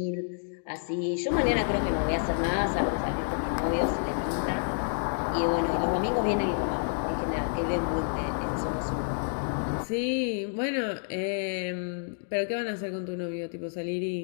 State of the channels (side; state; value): right; silent; digital silence